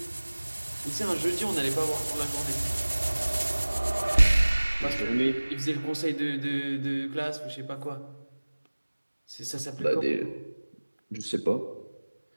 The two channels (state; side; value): inverted; both; correlation -1.00